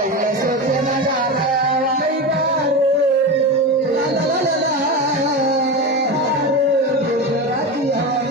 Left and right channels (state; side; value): normal; both; correlation 0.21